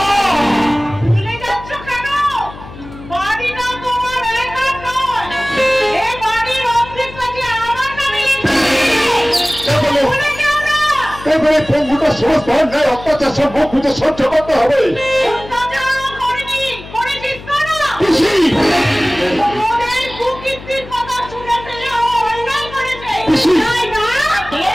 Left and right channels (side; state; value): left; noise; hum, 15 dB below the sound